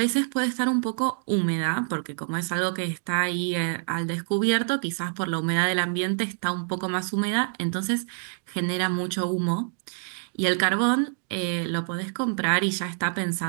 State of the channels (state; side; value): silent; left; digital silence